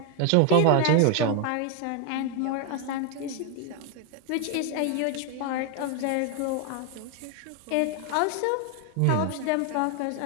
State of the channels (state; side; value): different; both; correlation 0.01